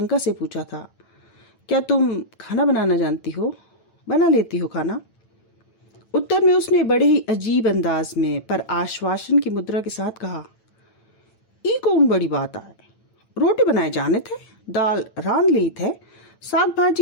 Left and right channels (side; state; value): right; late; 9.0 ms